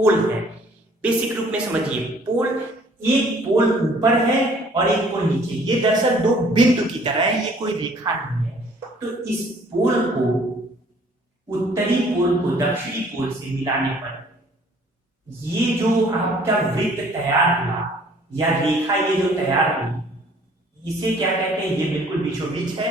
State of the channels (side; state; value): both; normal; correlation 0.57